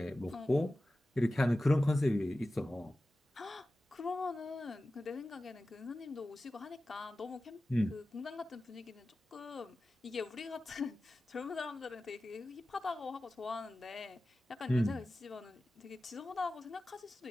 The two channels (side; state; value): both; normal; correlation 0.95